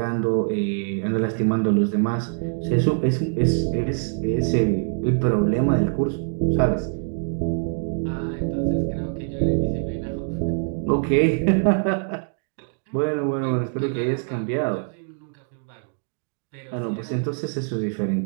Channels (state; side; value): silent; left; 59 dB below the other